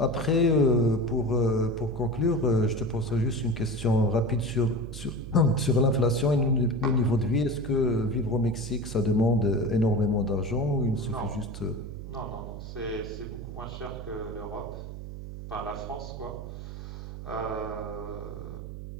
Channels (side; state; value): right; noise; hum, 10 dB below the sound